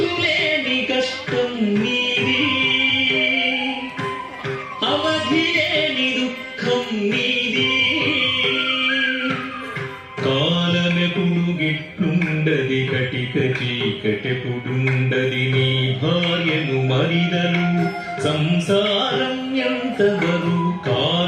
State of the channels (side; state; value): both; identical; correlation 1.00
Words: కష్టం నీది, అవధి లేని దుఃఖం నీది. కాలమెప్పుడు గిట్లుండది, కటిక చీకటెప్పుడుండది, నీ భార్యను మరిదలు సంసారం ఎంతవరు.